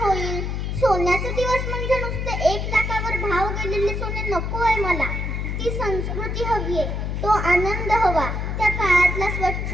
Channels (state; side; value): noise; left; hum, 2 dB below the sound